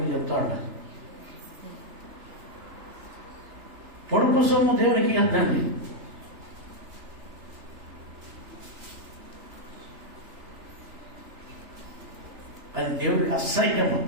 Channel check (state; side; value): late; left; 3.3 ms